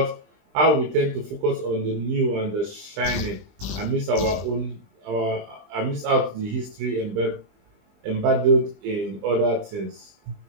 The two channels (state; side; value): late; left; 20 ms